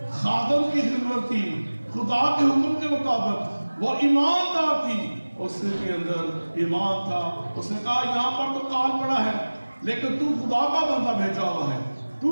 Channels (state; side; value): inverted; both; correlation -1.00